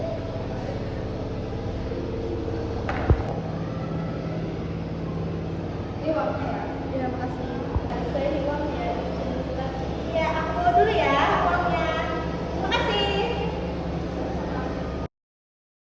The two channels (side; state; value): both; identical; correlation 1.00